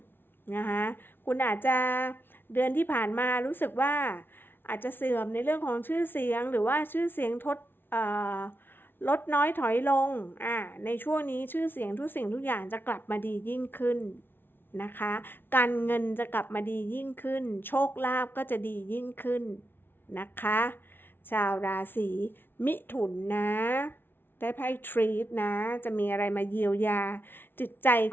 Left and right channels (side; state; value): right; late; 0.10 ms